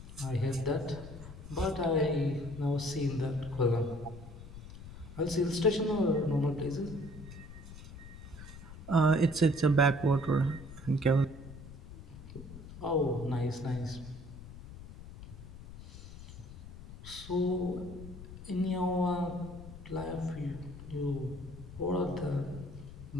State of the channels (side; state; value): left; noise; rumble, 14 dB below the sound